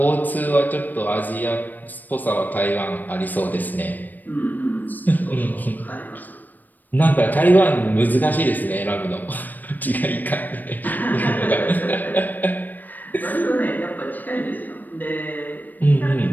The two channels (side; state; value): right; late; 0.087 ms